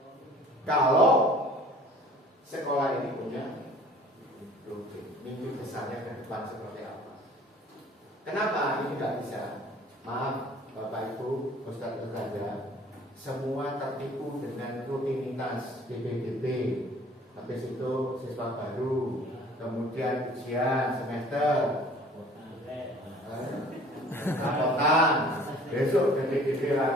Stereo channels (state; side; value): normal; both; correlation 0.50